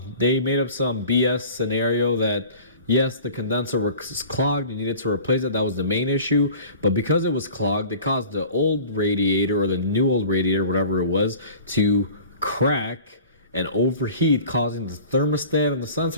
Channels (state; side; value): inverted; both; correlation -0.43